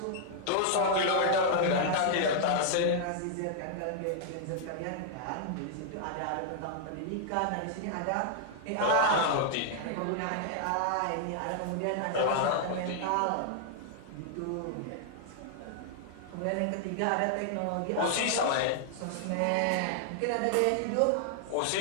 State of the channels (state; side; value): different; both; correlation 0.00